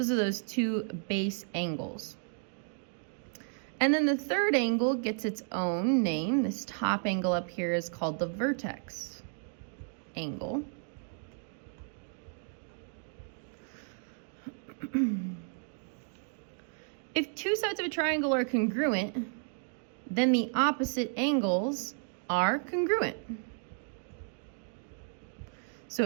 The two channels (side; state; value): left; silent; 56 dB below the other